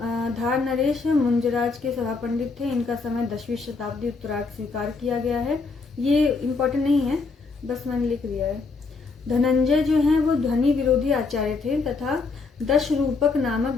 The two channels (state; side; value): quieter; right; 4.3 dB